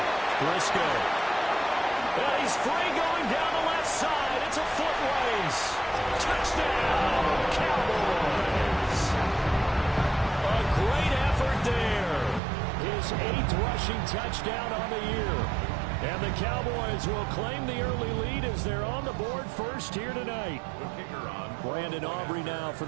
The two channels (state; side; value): drops out; left; at 12.4 s